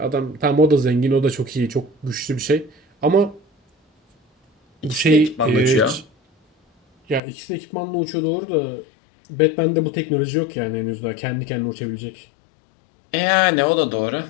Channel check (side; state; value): right; drops out; at 7.2 s